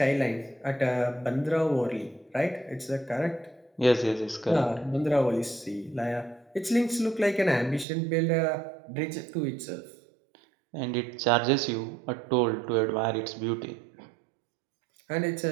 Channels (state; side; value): drops out; left; at 7.9 s